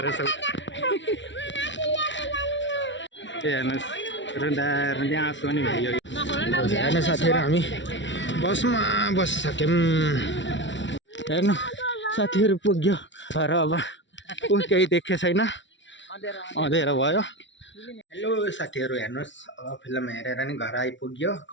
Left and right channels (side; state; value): right; late; 0.54 ms